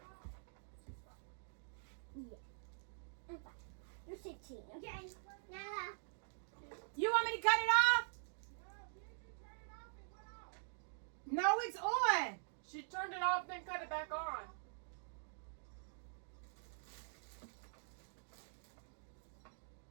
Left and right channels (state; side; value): silent; left; digital silence